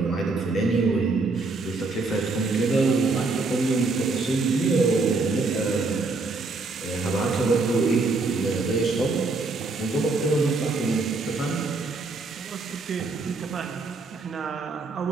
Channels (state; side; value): quieter; left; 3.7 dB